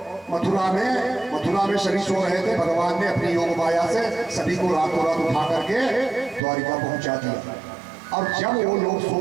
मथुरा में सभी सो रहे थे। भगवान ने अपनी योग माया से सभी को रातों रात उठा करके द्वारिका पहुंचा दिया। और जब वो लोग सो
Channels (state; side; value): drops out; left; at 6.4 s